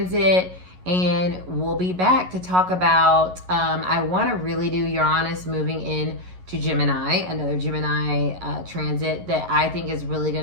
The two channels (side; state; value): left; late; 11 ms